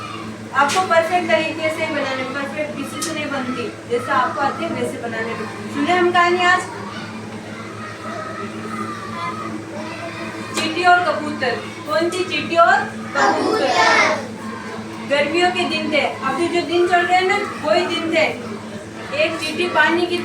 आपको परफेक्ट तरीके से बनाने, परफेक्ट किसी से नहीं बनती, जैसा आपको आते हैं वैसे बनाने में। सुने हम कहानी आज चींटी और कबूतर। कौन सी? चींटी और कबूतर। गर्मियों के दिन थे, अभी जो दिन चल रहे हैं ना वही दिन थे। एक चींटी पानी की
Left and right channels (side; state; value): both; identical; correlation 1.00